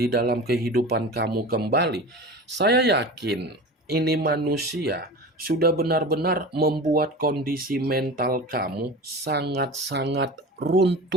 dalam kehidupan kamu kembali, saya yakin ini manusia sudah benar-benar membuat kondisi mental kamu sangat-sangat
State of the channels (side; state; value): both; normal; correlation 0.33